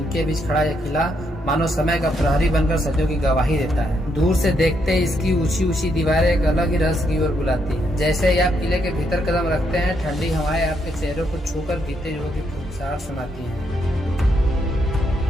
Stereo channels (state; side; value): normal; both; correlation 0.77